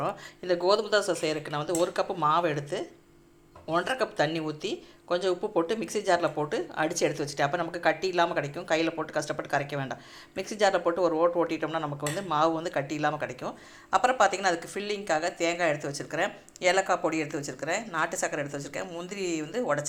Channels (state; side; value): identical; both; correlation 1.00